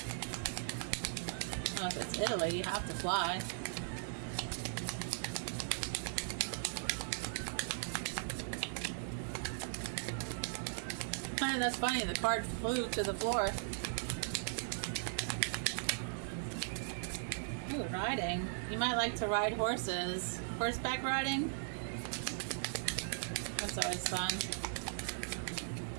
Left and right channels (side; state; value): left; silent; digital silence